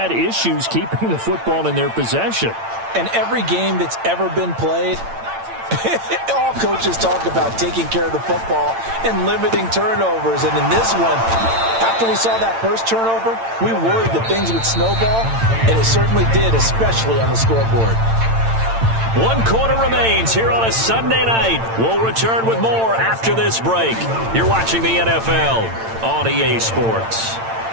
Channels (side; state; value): left; late; 8.9 ms